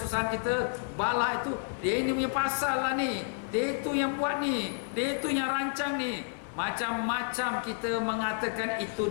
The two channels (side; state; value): right; silent; 58 dB below the other